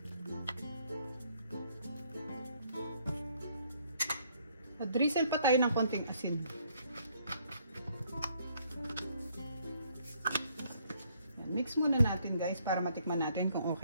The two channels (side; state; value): both; inverted; correlation -0.67